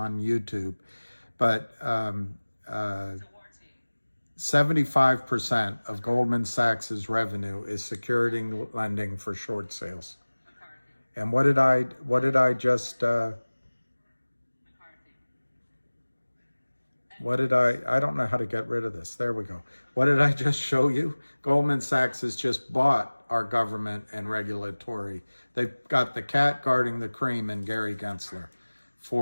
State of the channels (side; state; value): both; inverted; correlation -1.00